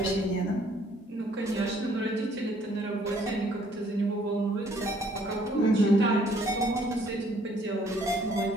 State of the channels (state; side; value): normal; both; correlation 0.62